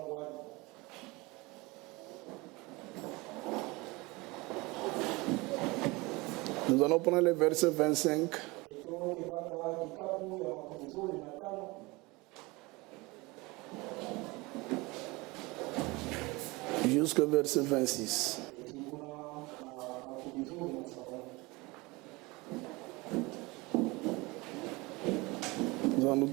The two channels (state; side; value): quieter; left; 23.8 dB